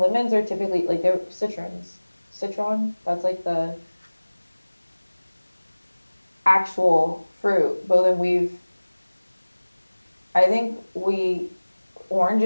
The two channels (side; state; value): both; inverted; correlation -1.00